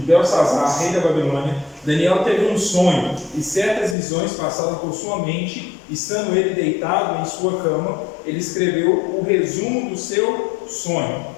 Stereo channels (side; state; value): right; drops out; at 4.0 s